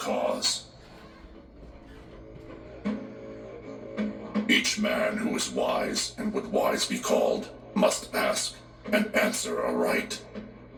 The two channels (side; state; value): both; identical; correlation 1.00